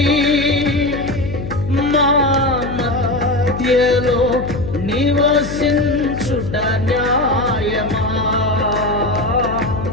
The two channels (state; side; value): noise; left; hum, 8 dB below the sound